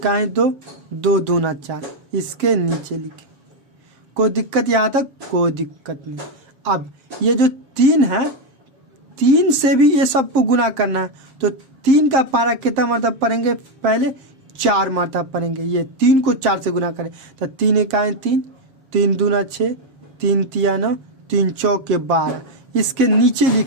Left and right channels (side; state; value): left; late; 7.5 ms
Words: 2, 2 दूना 4, इसके नीचे लिखें। कोई दिक्कत यहाँ तक? कोई दिक्कत नहीं। अब ये जो 3 है, 3 से भी ये सबको गुना करना है। तो 3 का पहाड़ा कितना मरतब पढ़ेंगे? पहले 4 मरतब पढ़ेंगे। ये 3 को 4 से गुना करें तो 3 इकाई 3, 3 दूना 6, 3 तिया 9, 3 चौके 12। इसके नीचे